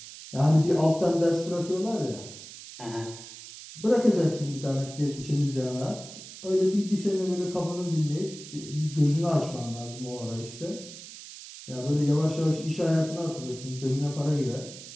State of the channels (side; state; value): right; noise; hiss, 14 dB below the sound